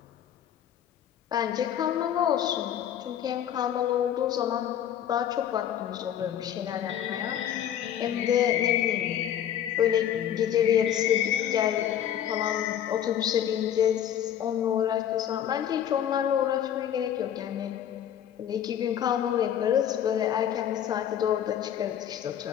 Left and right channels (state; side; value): quieter; right; 10.1 dB